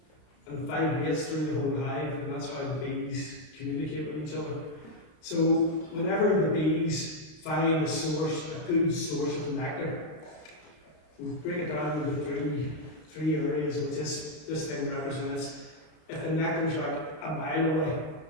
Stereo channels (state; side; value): late; right; 32 ms